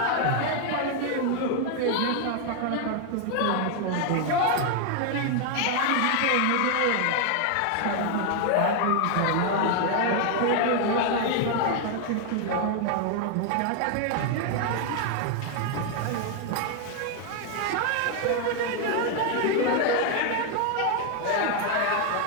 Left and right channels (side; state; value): both; different; correlation 0.00